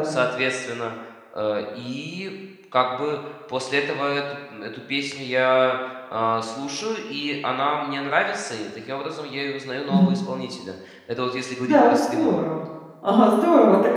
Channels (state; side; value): identical; both; correlation 1.00